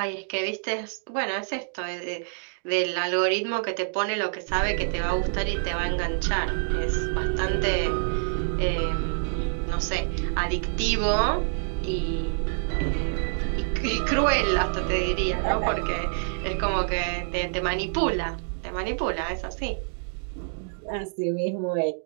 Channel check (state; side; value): silent; left; digital silence